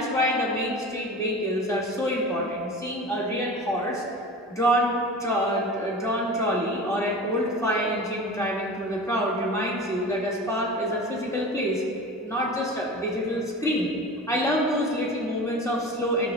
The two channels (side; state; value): both; normal; correlation 0.34